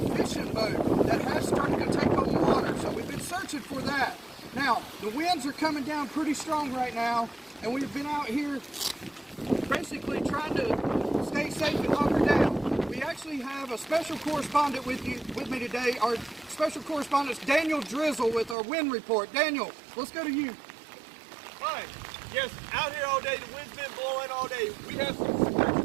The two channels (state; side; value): drops out; left; at 18.6 s